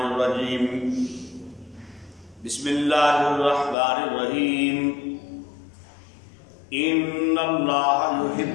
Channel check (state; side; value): drops out; right; at 3.8 s